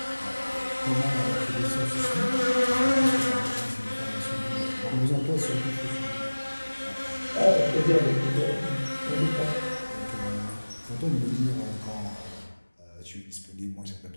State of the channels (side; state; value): both; inverted; correlation -1.00